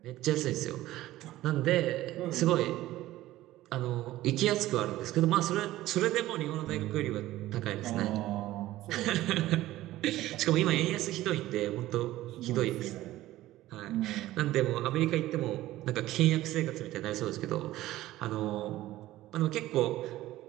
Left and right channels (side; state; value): left; quieter; 15.7 dB